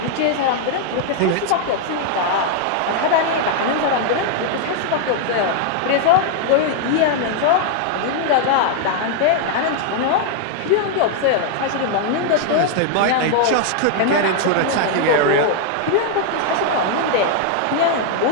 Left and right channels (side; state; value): both; different; correlation 0.00